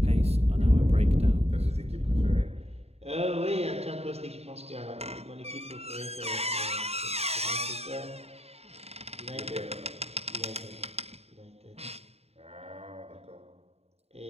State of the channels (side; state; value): left; late; 0.30 ms